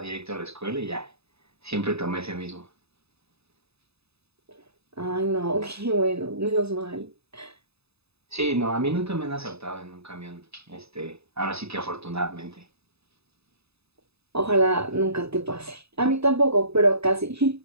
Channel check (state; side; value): late; left; 0.79 ms